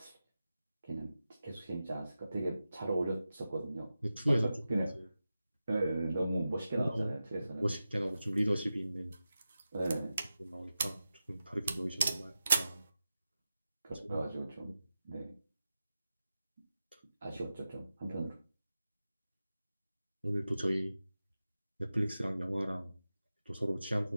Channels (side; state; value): both; inverted; correlation -0.93